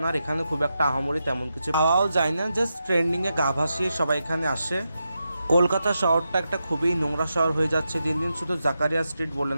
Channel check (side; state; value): both; inverted; correlation -0.87